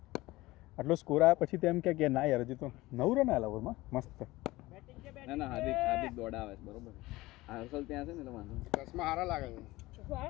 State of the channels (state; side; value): quieter; right; 19.2 dB